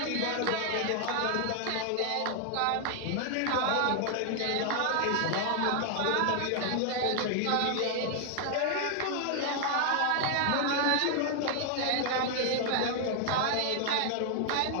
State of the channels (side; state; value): both; different; correlation 0.00